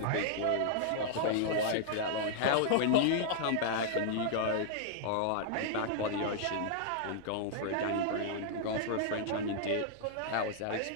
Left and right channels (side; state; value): both; different; correlation -0.01